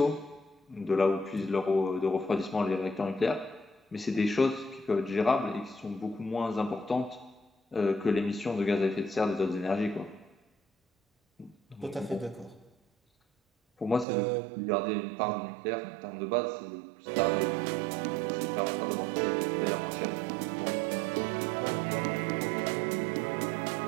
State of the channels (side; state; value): left; drops out; at 14.1 s